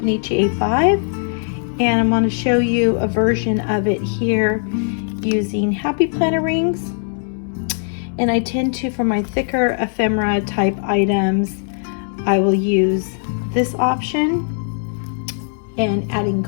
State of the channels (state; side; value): silent; right; digital silence